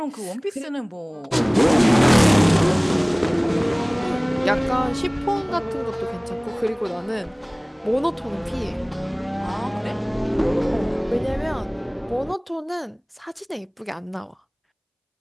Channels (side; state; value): both; identical; correlation 1.00